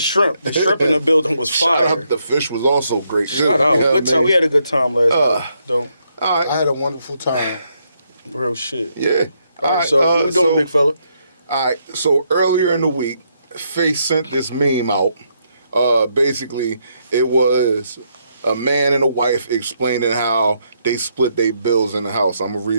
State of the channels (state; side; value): inverted; both; correlation -0.76